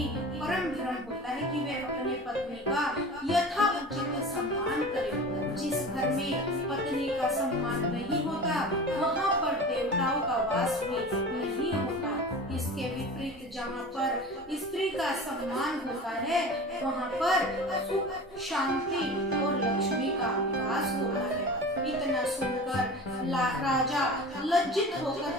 परम धर्म होता है कि वह अपने पत्नी का यथा उचित सम्मान करे। जिस घर में पत्नी का सम्मान नहीं होता वहाँ पर देवताओं का वास भी नहीं होता। इसके विपरीत जहाँ पर स्त्री का सम्मान होता है वहाँ पर सुख शांति और लक्ष्मी का वास होता है। इतना सुनकर राजा लज्जित होकर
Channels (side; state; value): both; normal; correlation 0.35